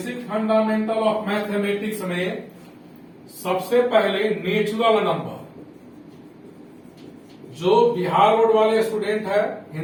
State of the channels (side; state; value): both; identical; correlation 1.00